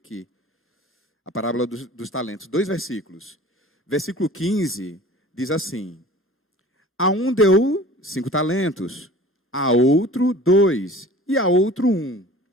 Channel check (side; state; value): both; normal; correlation 0.44